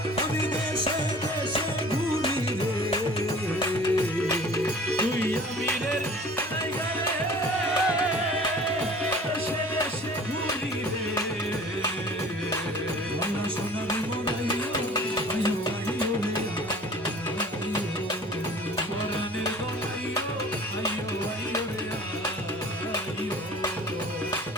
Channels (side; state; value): both; normal; correlation 0.46